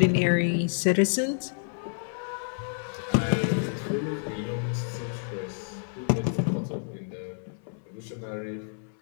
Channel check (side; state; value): right; silent; 59 dB below the other